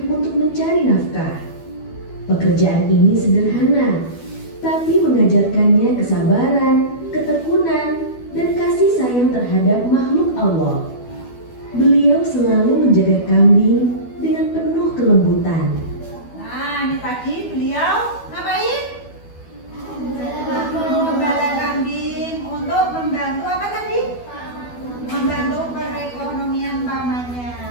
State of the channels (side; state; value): right; late; 12 ms